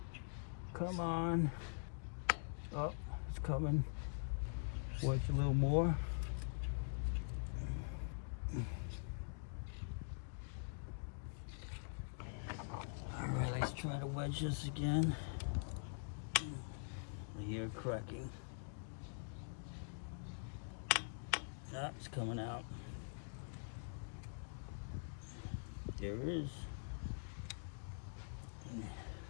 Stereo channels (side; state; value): right; silent; digital silence